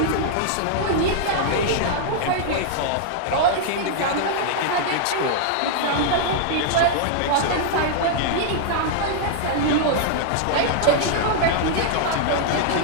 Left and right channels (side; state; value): both; different; correlation -0.01